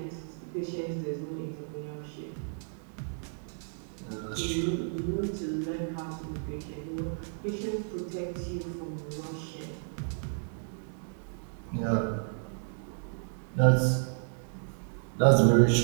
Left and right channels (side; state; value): left; silent; digital silence